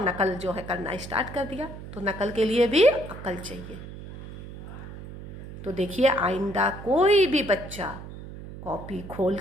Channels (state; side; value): noise; right; hum, 12 dB below the sound